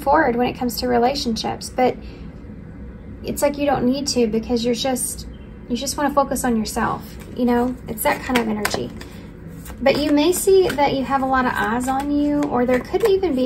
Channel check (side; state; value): both; identical; correlation 1.00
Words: forward when it comes to relationships. But it's like you don't need to, because you just want to focus on yourself. You know, it's that kind of energy. But you may see that you have a lot of eyes on you, or there could even